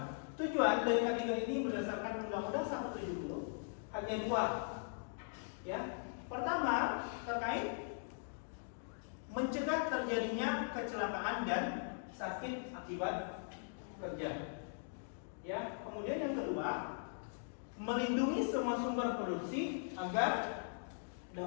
Tujuan dari ketiga ini berdasarkan Undang-Undang 170 hanya dua. Ya. Pertama, terkait mencegah terjadinya kecelakaan dan sakit akibat kerja. Ya, kemudian yang kedua, melindungi semua sumber produksi agar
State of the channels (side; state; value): right; silent; digital silence